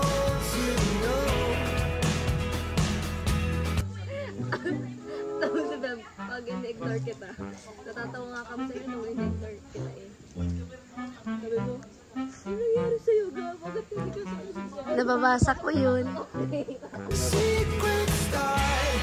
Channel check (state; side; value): identical; both; correlation 1.00